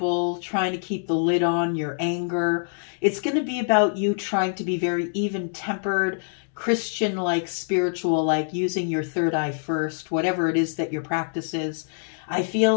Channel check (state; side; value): silent; right; 62 dB below the other